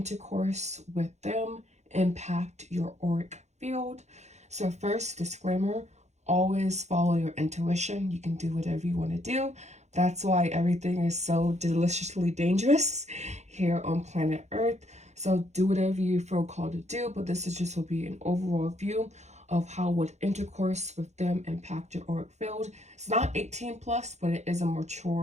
with them impact your auric field. So first, disclaimer, always follow your intuition. You can do whatever you want to do. That's why everything is so deliciously dangerous here on planet Earth. So do whatever you feel called to do, but this is just will be an overall view of how would intercourse with them impact your auric field. It's not 18 plus, but it is a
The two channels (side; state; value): left; late; 0.33 ms